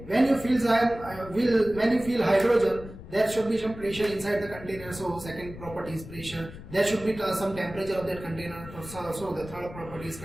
when you fill hydrogen, there should be some pressure inside the container. So second property is pressure. There should be some temperature of that container. So the third property is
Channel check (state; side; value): noise; left; rumble, 14 dB below the sound